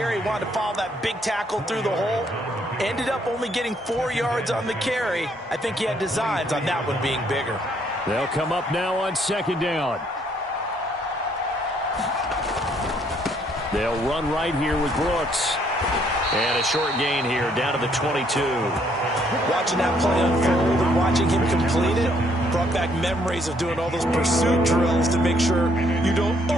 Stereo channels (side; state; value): both; normal; correlation 0.68